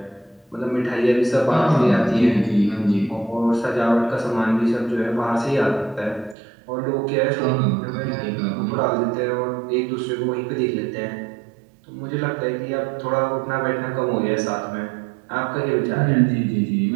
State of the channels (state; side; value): drops out; left; at 6.4 s